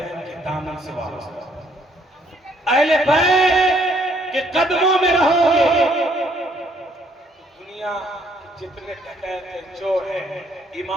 کے دامن سے وابستہ، اہل بیت کے قدموں میں رہو گے، دنیا جتنے ڈکیت چور ہیں،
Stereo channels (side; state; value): both; normal; correlation 0.66